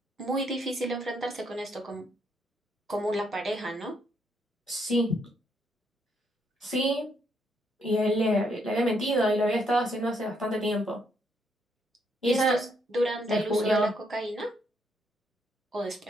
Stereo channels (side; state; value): both; normal; correlation 0.74